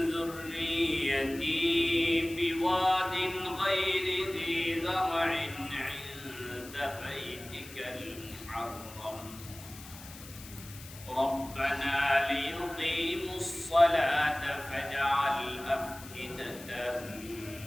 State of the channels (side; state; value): left; noise; hiss, 16 dB below the sound